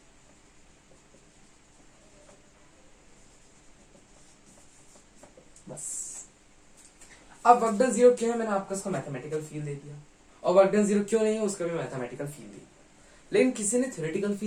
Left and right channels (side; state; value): both; identical; correlation 1.00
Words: बस, अब वर्क डन 0 क्यों है, मैंने आपको उसका मैथमेटिकल फील दे दिया, और वर्क डन 0 क्यों नहीं है उसका भी मैथमेटिकल फील दिया। लेकिन किसी ने थ्योरेटिकल